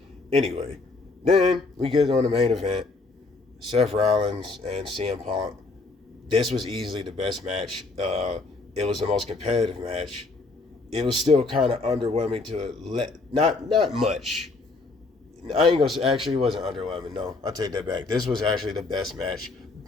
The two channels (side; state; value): right; quieter; 3.6 dB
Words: Anyway, then we get on the main event. Seth Rollins and CM Punk. This was easily the best match. It was the most competitive match. It was still kind of underwhelming not much. I ain't gonna say, actually it wasn't underwhelming. No, I'll take that back. This was actually the best match,